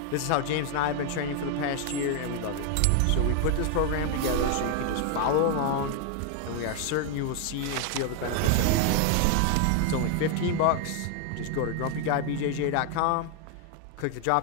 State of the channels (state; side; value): different; both; correlation 0.00